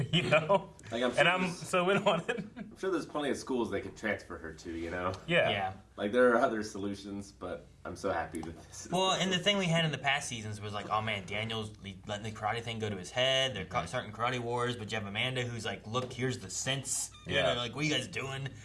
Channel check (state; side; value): identical; both; correlation 1.00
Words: I'm so in on it. I'm sure there's plenty of schools they could transfer her to, Yeah. Like, there are other solutions, but I'm so happy that this is... Well, and the thing we had in the past seasons was like, oh man, Daniel's letting the karate thing go to his head. They're starting karate wars, but you have Amanda who's like, look, here's the sense. Yeah. Like, what are you guys doing?